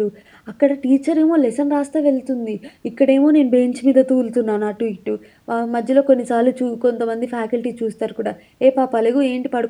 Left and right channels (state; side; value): identical; both; correlation 1.00